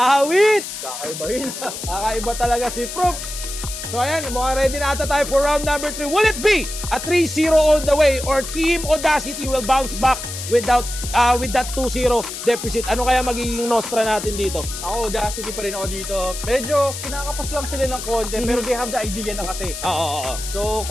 Kakaiba talaga si Prof. So ayan, mukhang ready na ata tayo for round number 3. Will it be a 3-0 all the way or Team Audacity will bounce back with that 2-0 deficit? Ano kaya magiging nostra natin dito? Ako, Audacity pa rin ako dito. Medyo kinakapos lang sila ng konti, pero they have the idea na kasi. Oo. So,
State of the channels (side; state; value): left; noise; hiss, 8 dB below the sound